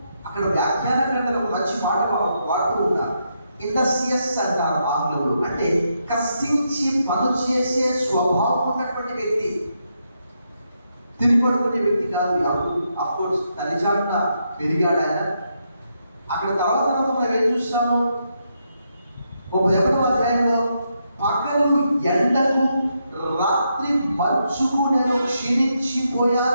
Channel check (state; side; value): inverted; both; correlation -0.80